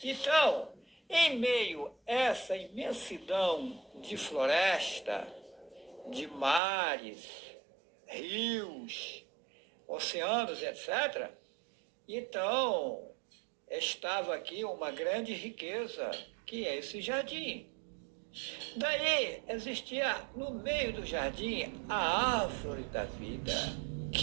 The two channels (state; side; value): drops out; left; at 6.6 s